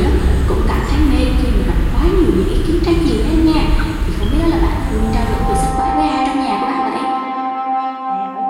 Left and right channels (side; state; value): both; identical; correlation 1.00